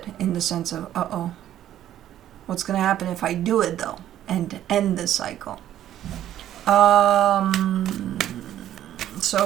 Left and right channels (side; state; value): left; quieter; 11.8 dB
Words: in the sense of, uh-oh, what's going to happen if I do it though, and end this cycle?